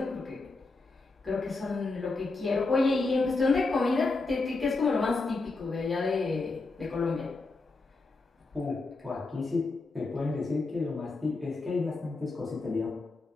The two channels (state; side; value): quieter; right; 3.6 dB